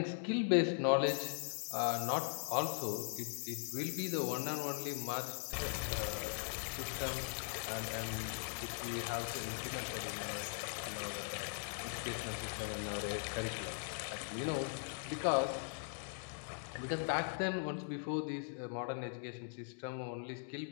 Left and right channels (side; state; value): right; silent; digital silence